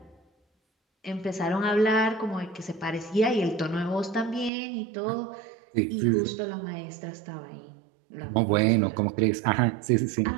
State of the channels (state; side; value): drops out; left; at 4.5 s